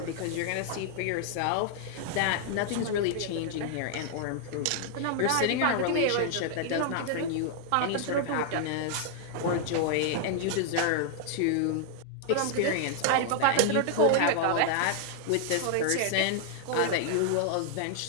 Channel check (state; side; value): different; both; correlation 0.00